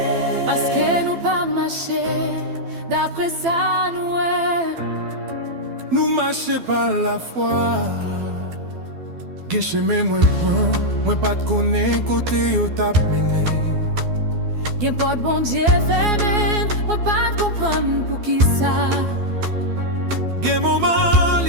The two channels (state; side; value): late; left; 12 ms